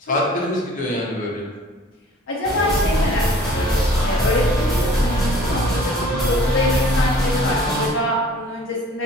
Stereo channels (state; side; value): normal; both; correlation 0.51